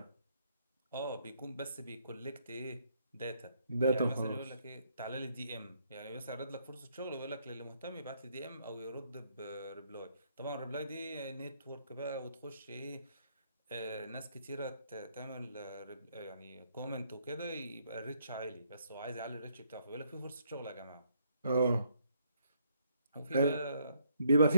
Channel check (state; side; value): inverted; both; correlation -0.71